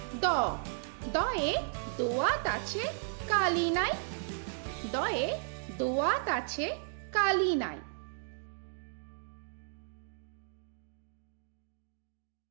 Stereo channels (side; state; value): left; silent; digital silence